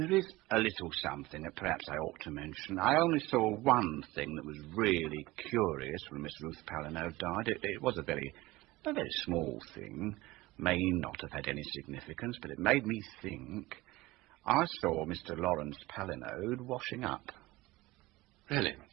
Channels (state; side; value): quieter; left; 19.7 dB